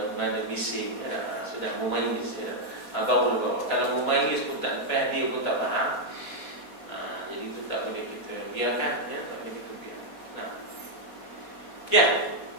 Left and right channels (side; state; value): right; late; 4.2 ms